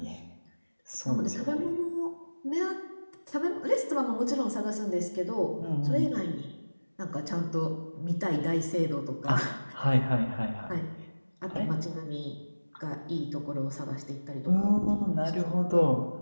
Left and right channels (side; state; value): both; inverted; correlation -1.00